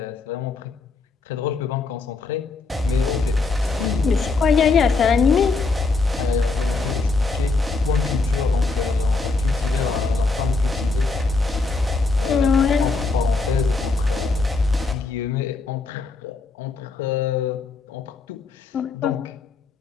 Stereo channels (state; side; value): quieter; right; 3.9 dB